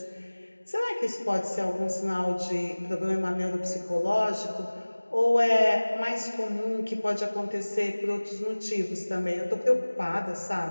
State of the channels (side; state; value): both; inverted; correlation -1.00